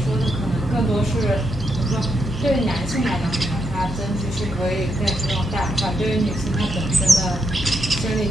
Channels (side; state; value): left; noise; hum, 10 dB below the sound